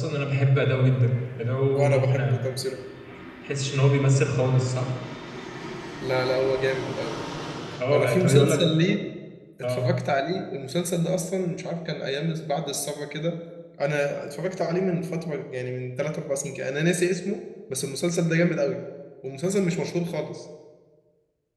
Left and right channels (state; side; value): identical; both; correlation 1.00